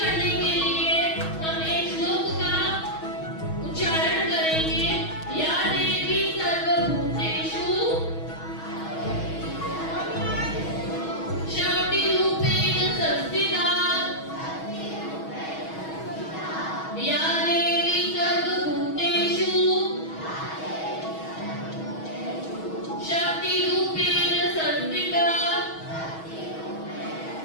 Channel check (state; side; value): late; right; 6.3 ms